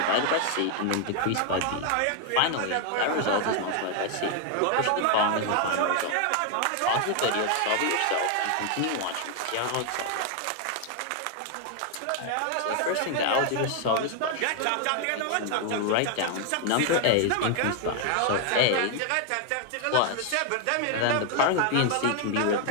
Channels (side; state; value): both; different; correlation 0.00